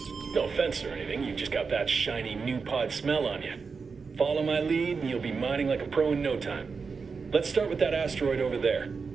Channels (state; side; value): quieter; left; 5.1 dB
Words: No offense or anything, you've just got that shiny new pod smell on you. Follow my lead and you'll be mining like a pro in no time. Let's start with that asteroid over there.